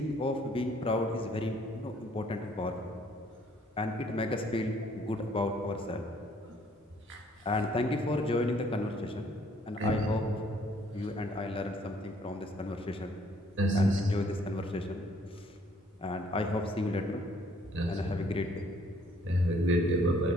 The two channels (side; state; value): both; normal; correlation 0.62